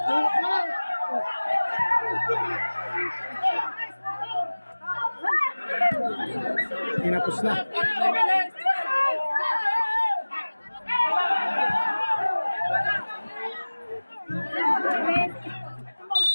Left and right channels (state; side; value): inverted; both; correlation -1.00